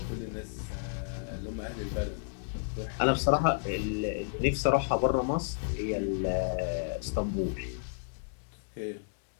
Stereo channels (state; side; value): silent; right; digital silence